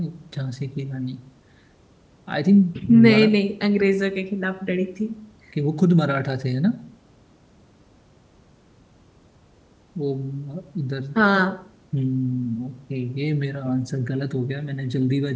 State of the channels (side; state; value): both; identical; correlation 1.00